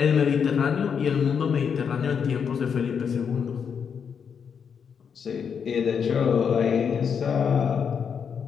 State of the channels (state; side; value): quieter; right; 6.9 dB